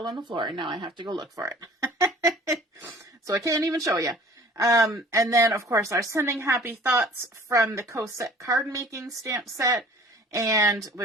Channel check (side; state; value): both; normal; correlation 0.49